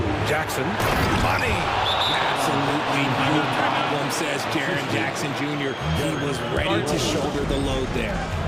Jackson, money. Absolutely no problem, says Jaren Jackson Jr. He was ready to shoulder the load there.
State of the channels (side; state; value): both; identical; correlation 1.00